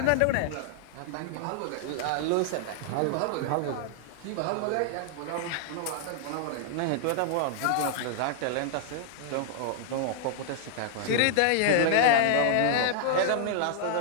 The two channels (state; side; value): different; both; correlation -0.01